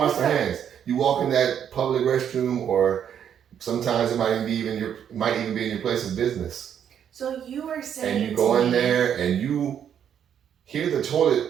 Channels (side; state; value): left; quieter; 8.9 dB